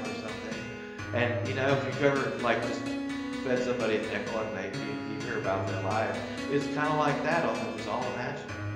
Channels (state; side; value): identical; both; correlation 1.00